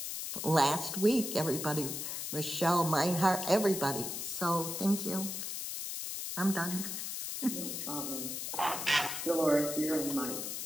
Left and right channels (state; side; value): noise; left; hiss, 4 dB below the sound